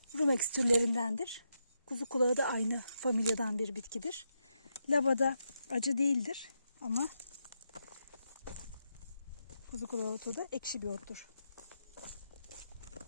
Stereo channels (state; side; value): inverted; both; correlation -0.83